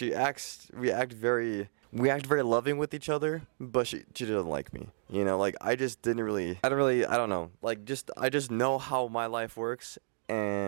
act very loving with each other, but she doesn't like me. You know, like, I don't know. Like, I just know how my life works.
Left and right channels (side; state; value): left; silent; digital silence